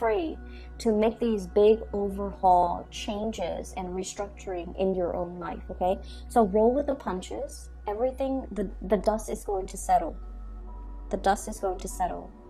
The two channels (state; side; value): identical; both; correlation 1.00